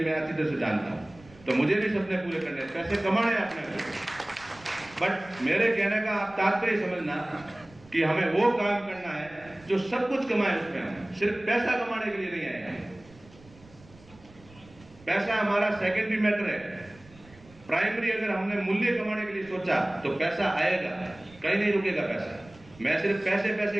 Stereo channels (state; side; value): noise; right; rumble, 24 dB below the sound